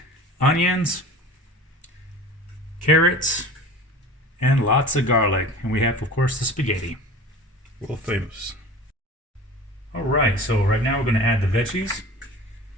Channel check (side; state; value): both; normal; correlation 0.39